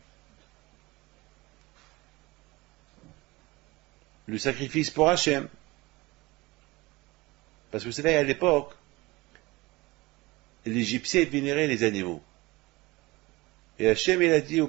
Le sacrifice pour Hachem. Parce que vous savez, à l'époque, les Égyptiens vénéraient les animaux. Et Hachem, il a dit au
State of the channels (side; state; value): left; quieter; 22.0 dB